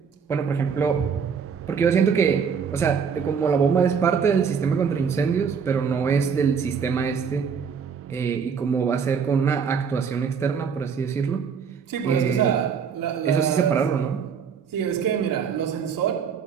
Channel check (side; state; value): left; quieter; 6.5 dB